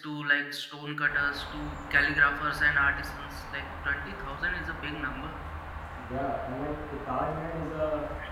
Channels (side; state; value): both; identical; correlation 1.00